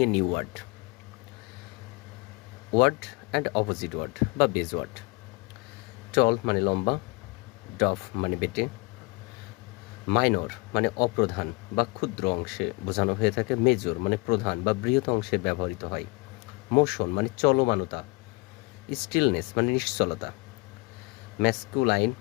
a new word, word and opposite word বা base word. টল মানে লম্বা, ডফ মানে বেটে, মাইনর মানে অপ্রধান বা ক্ষুদ্র অংশে বোঝানো হয়ে থাকে, মেজর মানে প্রধান বা বৃহৎ অংশে ব্যবহৃত হয়, মোশন মানে চলমানতা, স্টিলনেস মানে নিশ্চলতা, ম্যাসকুলাইন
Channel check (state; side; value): quieter; right; 27.0 dB